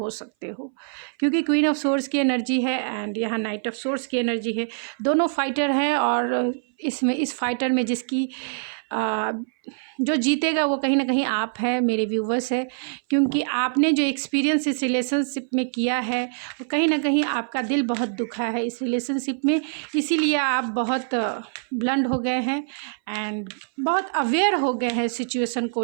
सकते हो, क्योंकि क्वीन ऑफ सोर्स की एनर्जी है एंड यहाँ नाइट ऑफ सोर्स की एनर्जी है। दोनों फाइटर हैं और इसमें इस फाइटर में जिसकी जो जीतेगा वो कहीं ना कहीं आप है, मेरे व्यूवर्स है, क्योंकि आपने जो एक्सपीरियंस इस रिलेशनशिप में किया है वो कहीं ना कहीं आपका दिल बहुत दुखा है इस रिलेशनशिप में, इसीलिए आप बहुत ब्लंड हो गए हैं एंड बहुत अवेयर हो गए हैं सिचुएशन को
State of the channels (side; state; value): left; silent; 60 dB below the other